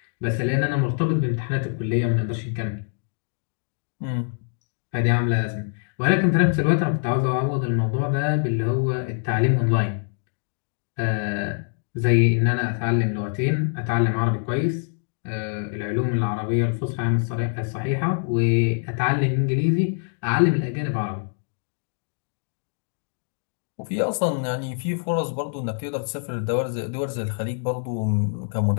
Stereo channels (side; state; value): right; silent; digital silence